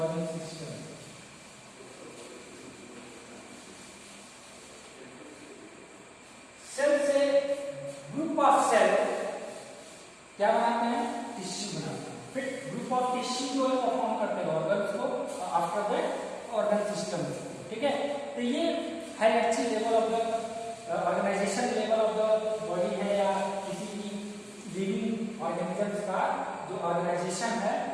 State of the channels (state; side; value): identical; both; correlation 1.00